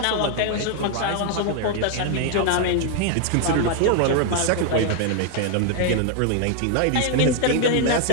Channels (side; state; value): both; different; correlation 0.00